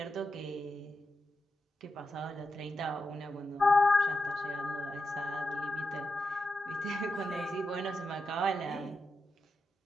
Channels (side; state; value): both; normal; correlation 0.88